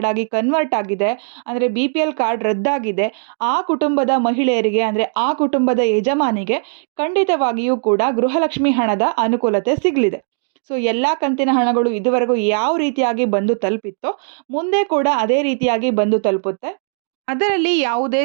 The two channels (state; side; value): silent; left; digital silence